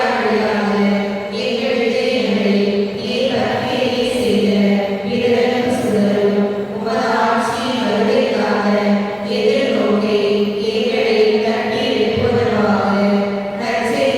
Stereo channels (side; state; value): both; identical; correlation 1.00